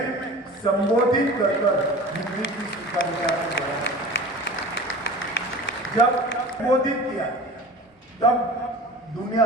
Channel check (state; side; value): normal; both; correlation 0.38